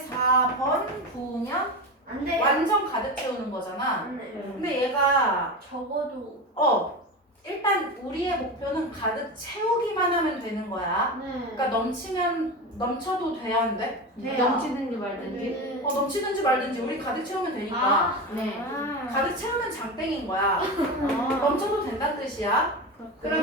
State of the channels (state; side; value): normal; both; correlation 0.23